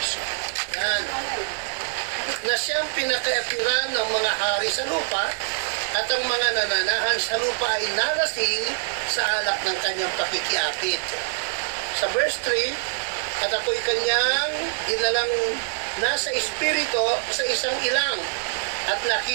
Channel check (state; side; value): silent; left; 56 dB below the other